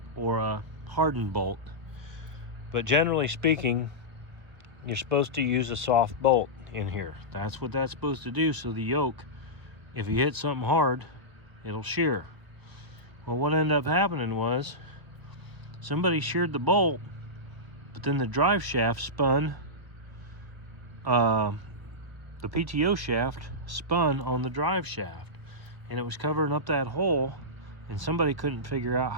or a hardened bolt, but generally speaking, you're supposed to use a soft bolt in here. That's what that's supposed to do, so the yoke, if you hit something hard, it'll shear. Well, what ended up happening was somebody sheared the bolt, but then the drive shaft spun, the PTO shaft spun on the drive shaft, and it was covering up that hole, and somebody couldn't figure out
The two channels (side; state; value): left; late; 1.2 ms